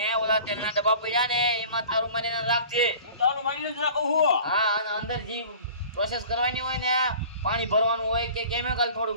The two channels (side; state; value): both; inverted; correlation -0.44